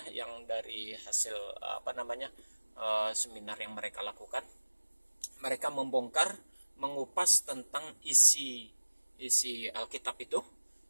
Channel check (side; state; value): both; inverted; correlation -1.00